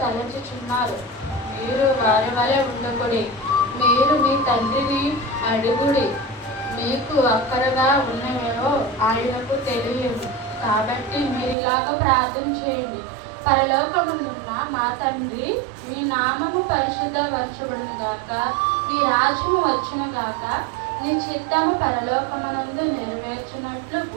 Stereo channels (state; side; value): drops out; left; at 11.6 s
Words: తలచుచున్నారు. మీరు వారి వలె ఉండకుడి. మీరు మీ తండ్రిని అడుగుడి, మీకు అక్కరగా ఉన్నవేవో ఆయనకు తెలియదు. కాబట్టి మీరు ఇలాగ ప్రార్థన చేయండి. పరలోకమునున్న మా తండ్రి, మీ నామము పరిశుద్ధపరచబడును గాక, మీ రాజ్యము వచ్చును గాక, నీ చిత్తము పరలోకమునందు నెరవేర్చినట్లు